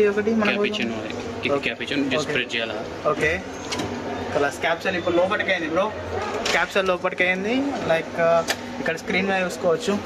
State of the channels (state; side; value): identical; both; correlation 1.00